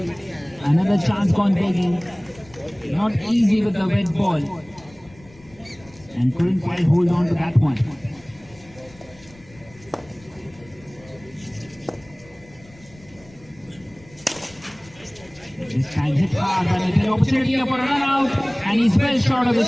Another chance gone begging. Not easy with the red ball. And couldn't quite hold on to that one. This time hit hard, but it's an opportunity for a run out, and he's well short of the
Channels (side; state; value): left; noise; rumble, 25 dB below the sound